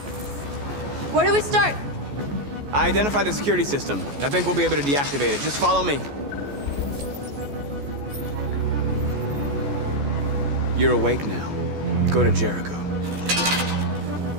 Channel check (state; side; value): late; left; 14 ms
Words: Where do we start? I identified the security system. I think we'll be able to deactivate it. Just follow me. You're awake now. Go to Jericho.